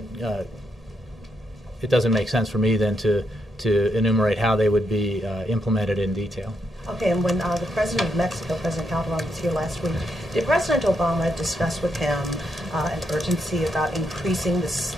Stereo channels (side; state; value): both; normal; correlation 0.80